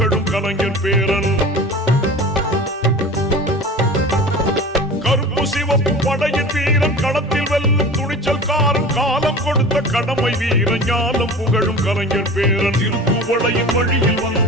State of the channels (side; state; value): both; normal; correlation 0.37